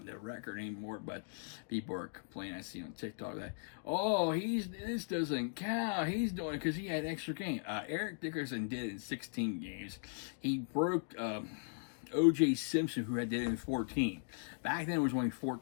the record anymore, but people are complaining. I see on TikTok that, this doesn't count. He's doing it because he had extra game. Eric Dickerson did it in 16 games. He broke O.J. Simpson, who did it in 14. Back then, it was only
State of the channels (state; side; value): silent; right; digital silence